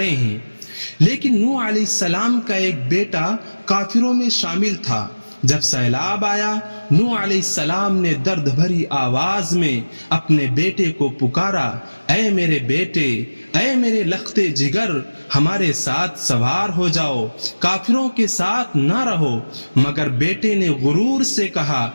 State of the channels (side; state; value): both; inverted; correlation -1.00